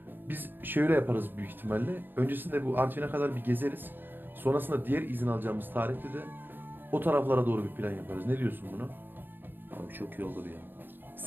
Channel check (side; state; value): left; late; 0.094 ms